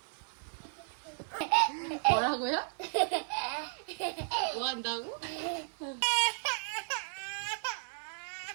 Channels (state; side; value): silent; left; digital silence